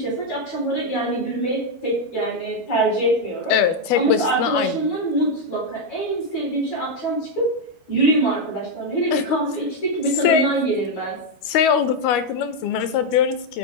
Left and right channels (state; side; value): late; right; 12 ms